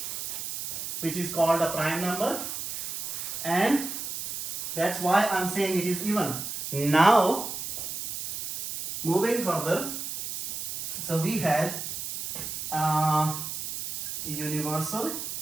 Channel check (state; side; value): noise; right; hiss, 6 dB below the sound